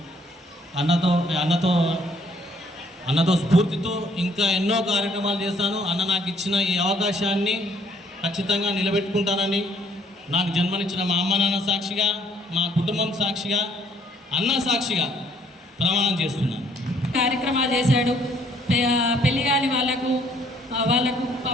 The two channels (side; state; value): both; normal; correlation 0.64